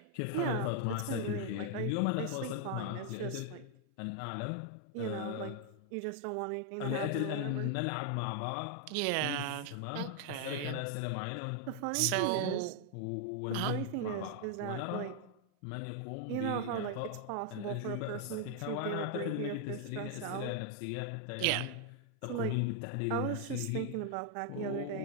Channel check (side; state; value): both; different; correlation 0.00